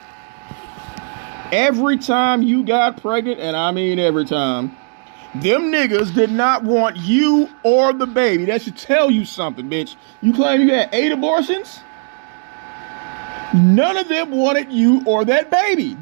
every time you got pregnant, and I mean every time, them niggas did not want you or the baby. That should tell you something, bitch. You claim you had 8 abortions? None of them wanted you or that baby.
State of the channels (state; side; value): silent; left; 57 dB below the other